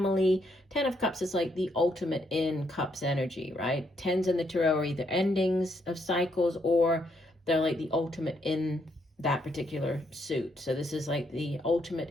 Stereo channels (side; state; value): both; normal; correlation 0.75